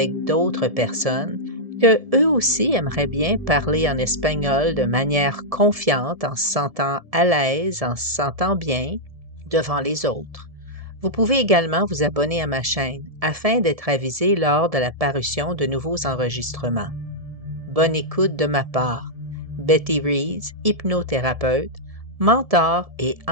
d'autres personnes que eux aussi aimeraient bien parler en espagnol de manière confiante, en se sentant à l'aise, en se sentant bien devant les autres. Vous pouvez également vous abonner à ma chaîne afin d'être avisé lors de la parution de nouveaux enregistrements. Bonne écoute de ma part. Betty Rees, hypnothérapeute, mentor et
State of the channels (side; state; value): left; late; 1.7 ms